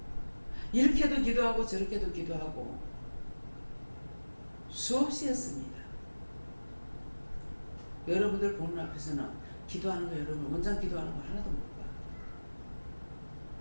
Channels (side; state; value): both; inverted; correlation -1.00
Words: 이렇게도 기도하고 저렇게도 기도하고 수없이 했습니다. 여러분들 보는 앞에서는 기도하는 거, 여러분 원장 기도하는 거 하나도 못 봐.